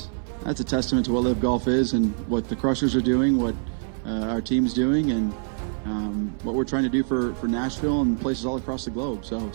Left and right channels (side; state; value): left; silent; 62 dB below the other